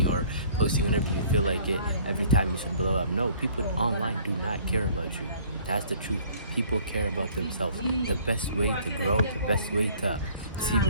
or posting whenever you feel like it, every time you should blow up. No, people online do not care about you. That's the truth. People care about themselves. The best way to grow, the best way to see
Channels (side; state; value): both; inverted; correlation -0.55